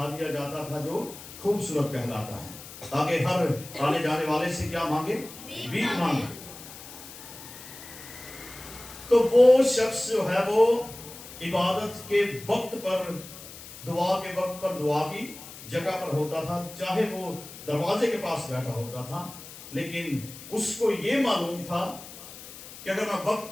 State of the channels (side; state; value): left; noise; hiss, 15 dB below the sound